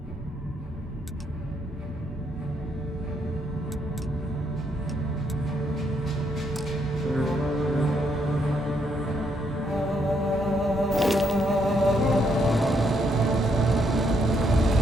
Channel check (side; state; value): both; normal; correlation 0.74